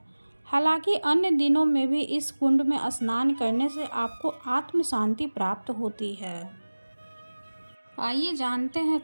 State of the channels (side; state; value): both; inverted; correlation -1.00